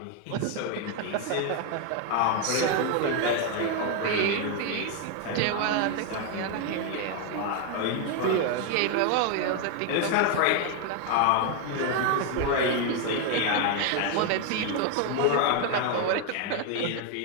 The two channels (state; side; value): different; both; correlation 0.01